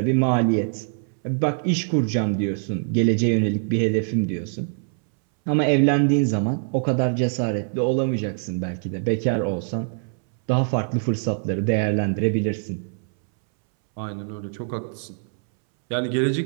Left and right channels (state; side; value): silent; left; 63 dB below the other